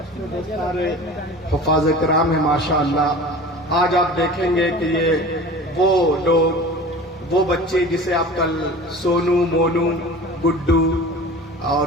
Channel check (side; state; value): both; normal; correlation 0.38